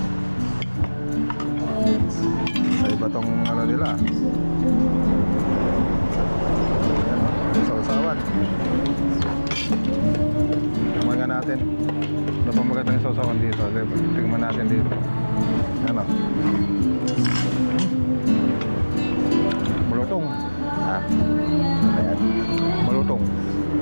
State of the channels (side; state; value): both; inverted; correlation -1.00